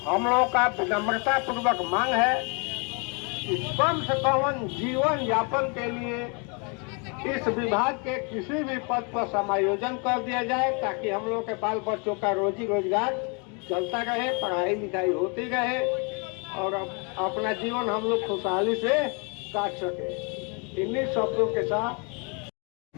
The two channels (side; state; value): right; quieter; 34.4 dB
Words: हम लोगों का विनम्रता पूर्वक मांग है कि कम से कम जीवन यापन के लिए इस विभाग के किसी भी पद पर समायोजन कर दिया जाए, ताकि हम लोग के बाल बच्चों का रोजी रोजगार चलता रहे, पढ़ाई लिखाई होती रहे और अपना जीवन हम लोग खुशहाली से काट सके। इन्हीं शब्दों के साथ